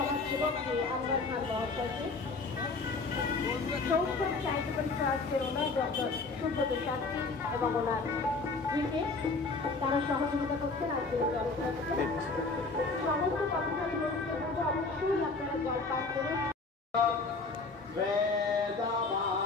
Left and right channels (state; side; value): quieter; right; 3.9 dB